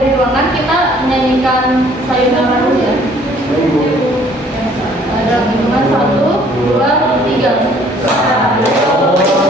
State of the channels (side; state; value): both; normal; correlation 0.58